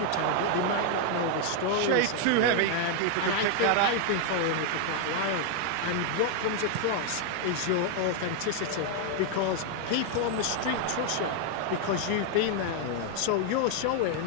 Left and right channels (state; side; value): different; both; correlation 0.00